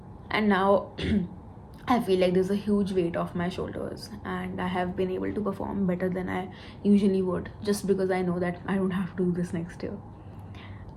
now I feel like there's a huge weight off my shoulders, and I have been able to perform better than I usually would, just because I know that I don't have to do this next year.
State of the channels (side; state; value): both; identical; correlation 1.00